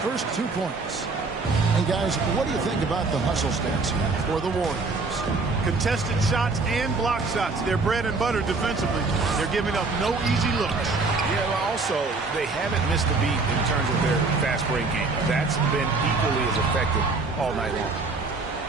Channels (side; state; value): left; quieter; 3.9 dB